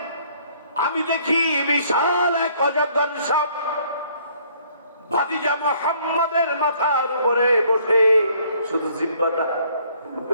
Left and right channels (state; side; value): inverted; both; correlation -0.62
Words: আমি দেখি বিশাল এক অজগর সাপ ভাতিজা মুহাম্মাদের মাথার উপরে বসে শুধু জিহ্বাটা